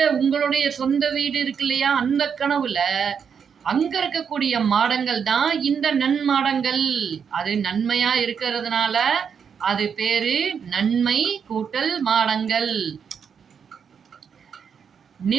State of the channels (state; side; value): quieter; left; 6.9 dB